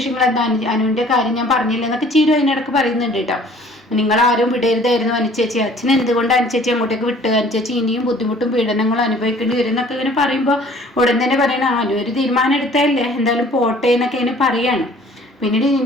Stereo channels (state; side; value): normal; both; correlation 0.53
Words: എന്താ, അനുവിൻ്റെ കാര്യം ഞാൻ പറഞ്ഞില്ല എന്നൊക്കെ ചീരു അതിനിടക്ക് പറയുന്നുണ്ട് കേട്ടോ. നിങ്ങളാരും വിടരുതായിരുന്നു അനുചേച്ചി, അച്ഛൻ എന്തുകൊണ്ട് അനുചേച്ചി അങ്ങോട്ടേക്ക് വിട്ട്? അനുചേച്ചി ഇനിയും ബുദ്ധിമുട്ടും പീഡനങ്ങളും അനുഭവിക്കേണ്ടി വരും എന്നൊക്കെ ഇങ്ങനെ പറയുമ്പോൾ ഉടൻ തന്നെ പറയണ, അനു ഒരു തീരുമാനം എടുത്തല്ലേ, എന്തായാലും പോട്ടെ എന്നൊക്കെ ഇങ്ങനെ പറയാണ്. പിന്നീട്